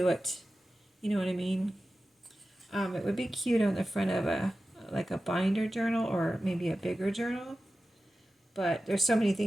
it. You know what I mean? It would be cute on the front of like a binder journal or maybe a bigger journal. But there's so many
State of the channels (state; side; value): normal; both; correlation 0.94